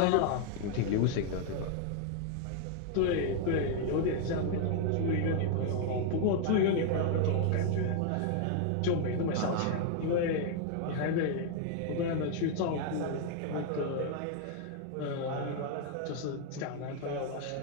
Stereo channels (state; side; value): different; both; correlation 0.00